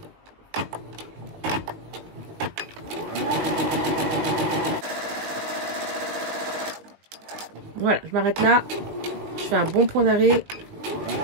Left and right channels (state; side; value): late; left; 19 ms